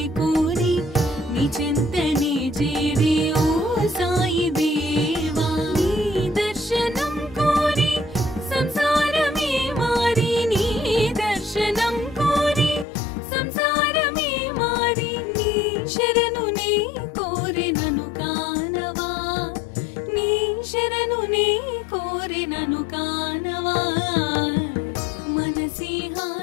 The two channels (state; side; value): drops out; right; at 12.9 s